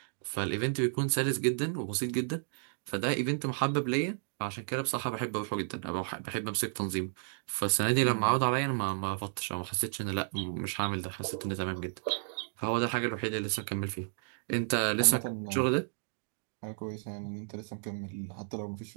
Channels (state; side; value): silent; left; digital silence